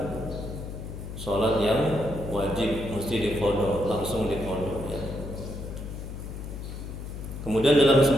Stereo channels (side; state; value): left; noise; hum, 8 dB below the sound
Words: salat yang wajib, mesti diqadha, langsung diqadha ya. Kemudian dalam